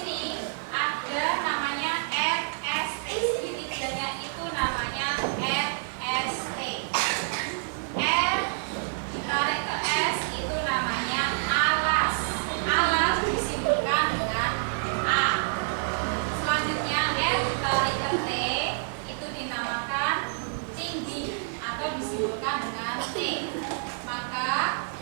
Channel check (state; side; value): silent; left; digital silence